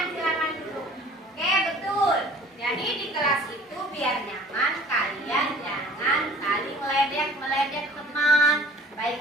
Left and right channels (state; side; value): normal; both; correlation 0.49